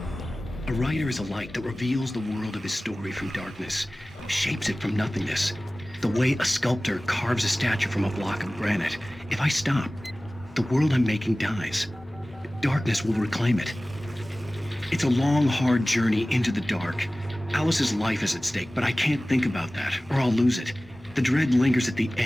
A writer is a light that reveals the world of his story from darkness, shapes it from nothingness. The way a sculptor carves a statue from a block of granite. If I stop, the world I'm making dies. Darkness will reclaim it. It's a long, hard journey into the dark. Alice's life is at stake, but I can't think about that, or I'll lose it. The dread lingers at the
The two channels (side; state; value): both; normal; correlation 0.97